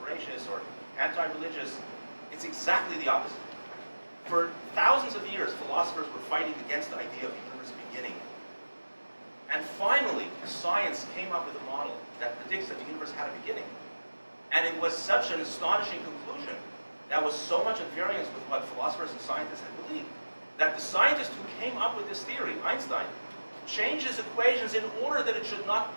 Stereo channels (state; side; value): inverted; both; correlation -1.00